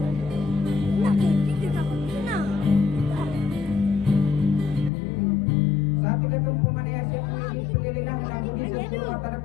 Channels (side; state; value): right; drops out; at 4.9 s